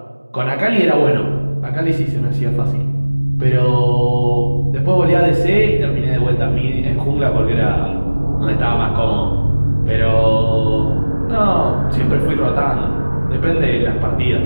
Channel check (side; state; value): both; inverted; correlation -1.00